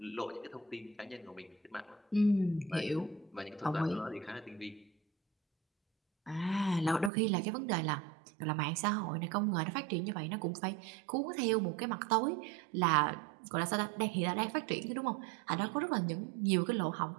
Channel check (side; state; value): left; drops out; at 7.1 s